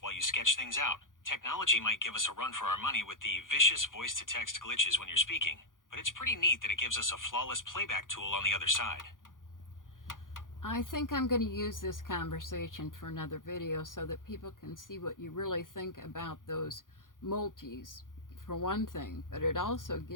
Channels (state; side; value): late; right; 0.89 ms